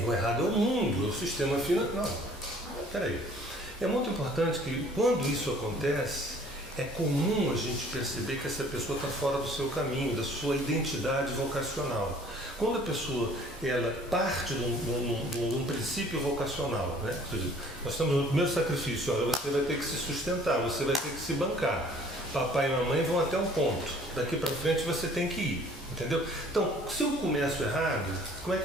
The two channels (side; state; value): both; normal; correlation 0.54